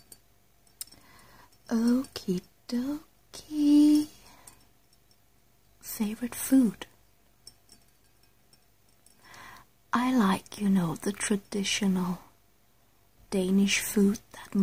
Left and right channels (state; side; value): identical; both; correlation 1.00